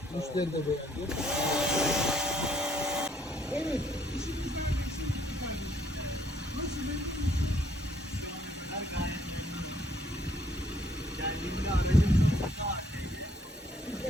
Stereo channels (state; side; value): normal; both; correlation 0.65